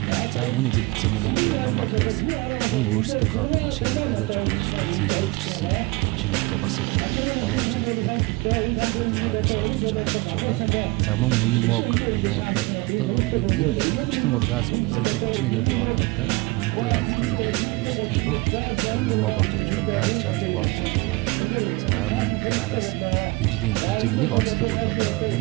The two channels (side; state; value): left; quieter; 23.8 dB